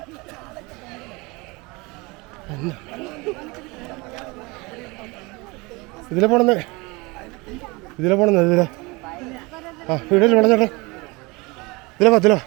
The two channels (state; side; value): quieter; left; 25.2 dB